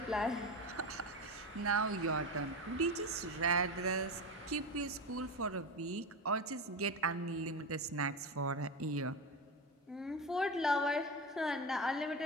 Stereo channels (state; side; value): normal; both; correlation 0.20